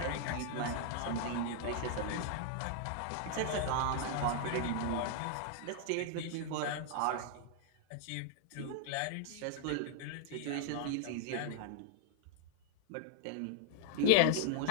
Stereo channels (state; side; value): different; both; correlation 0.00